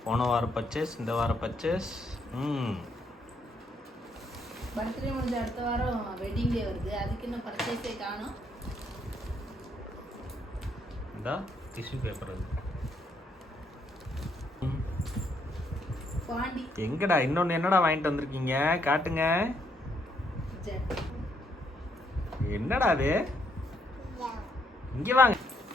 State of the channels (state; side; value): normal; both; correlation 0.73